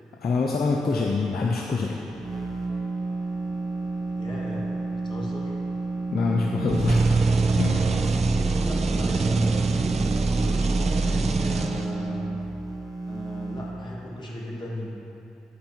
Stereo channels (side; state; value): both; normal; correlation 0.89